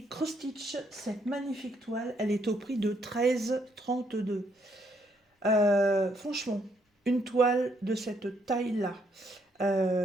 Cross Stitch, cette magnifique toile, elle est au prix de 13,32. Franchement, une toile de cette taille-là,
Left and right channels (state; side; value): normal; both; correlation 0.72